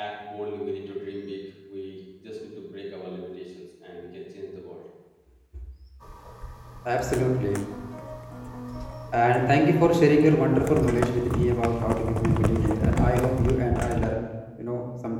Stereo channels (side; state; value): both; identical; correlation 1.00